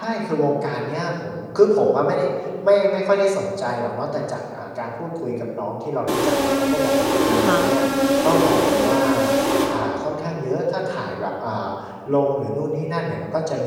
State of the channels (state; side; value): identical; both; correlation 1.00